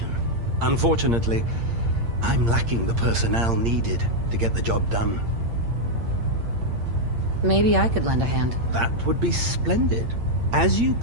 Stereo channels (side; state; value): left; late; 8.7 ms